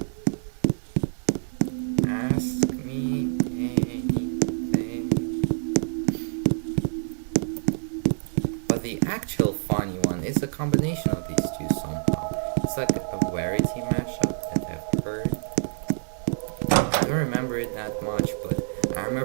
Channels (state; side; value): silent; left; digital silence